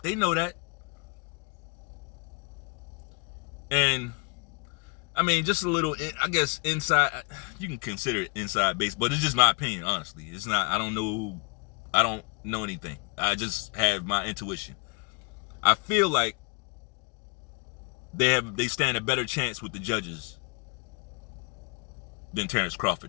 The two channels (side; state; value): right; quieter; 33.3 dB